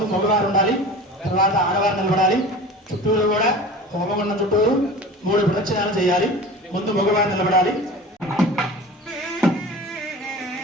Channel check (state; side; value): normal; both; correlation 0.37